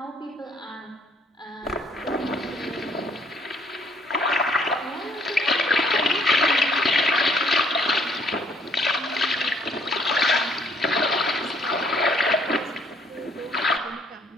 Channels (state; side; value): normal; both; correlation 0.63